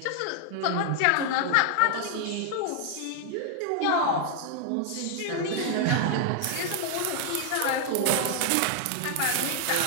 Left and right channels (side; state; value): both; different; correlation 0.00